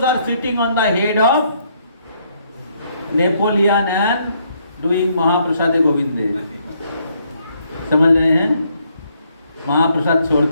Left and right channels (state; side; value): inverted; both; correlation -0.71